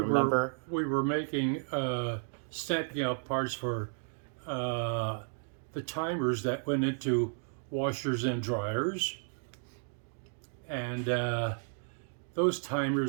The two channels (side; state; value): left; silent; 56 dB below the other